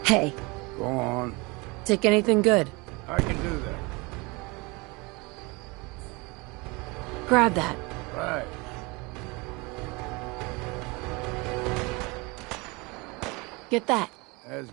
Hey. Go on. Take anything good. I can do that. Grab that. Right. Get that. As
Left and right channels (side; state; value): left; quieter; 26.5 dB